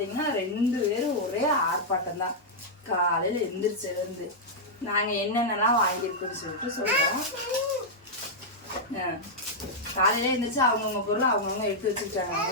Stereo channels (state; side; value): normal; both; correlation -0.06